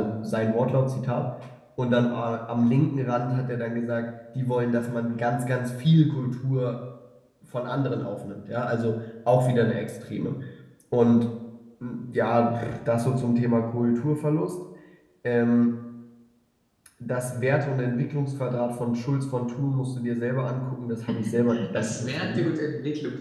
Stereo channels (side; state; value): both; identical; correlation 1.00